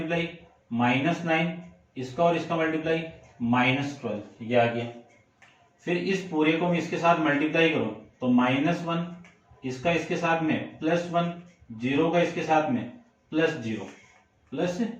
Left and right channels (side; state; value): both; identical; correlation 1.00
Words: -9 इसका और इसका मल्टीप्लाई -12, ये आ गया। फिर इस पूरे को मैं इसके साथ मल्टीप्लाई करूं तो -1 इसका इसके साथ में +1 0 का इसके साथ में